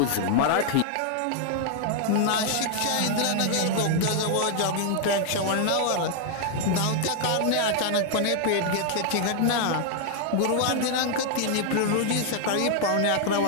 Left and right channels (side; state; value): both; different; correlation 0.00